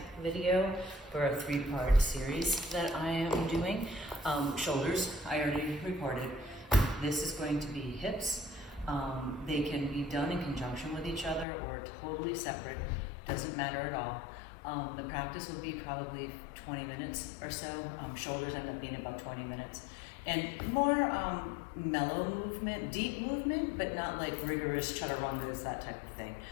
video for a 3-part series that I am doing. Shoulders, I already recorded. This is going to be hips. They can be done in conjunction with each other or totally separate, doesn't matter at all. The practice will be probably 20 minutes or so. Shoulders end up being about 20 minutes. And more mellow movement, deep movement, but not like rigorous chaturangas, that type of thing.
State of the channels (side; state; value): right; drops out; at 11.5 s